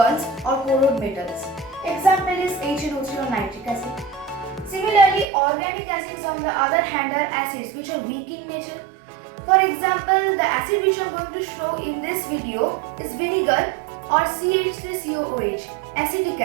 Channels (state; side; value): drops out; left; at 5.2 s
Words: or corrode metals. Example is HNO3 or nitric acid. Similarly, organic acids on the other hand are acids which are weak in nature. For example, the acid which I am going to show in this video is vinegar or CH3COOH, acetic